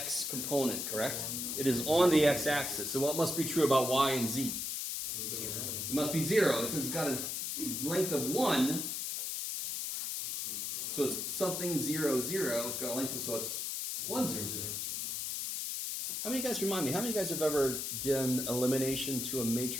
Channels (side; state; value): left; noise; hiss, 3 dB below the sound